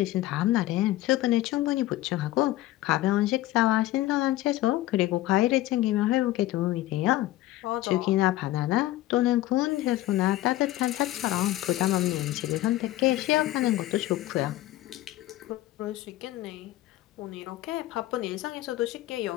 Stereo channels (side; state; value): right; quieter; 15.9 dB